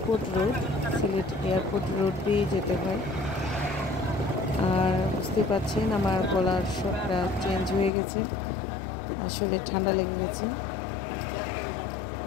road, Sylhet airport road দিয়ে যেতে হয়। আর বুঝতে পারছেন আমার গলার স্বরটা চেঞ্জ হয়ে গেছে, আসলে ঠান্ডা লেগে গেছে।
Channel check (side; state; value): right; drops out; at 7.9 s